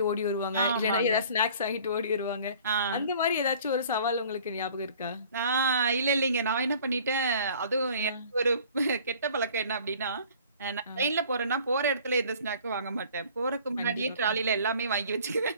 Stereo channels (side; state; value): both; inverted; correlation -0.50